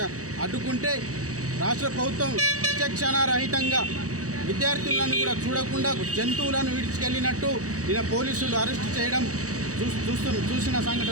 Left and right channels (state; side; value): late; left; 0.66 ms